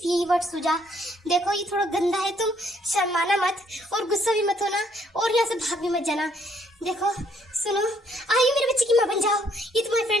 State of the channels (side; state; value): both; normal; correlation 0.68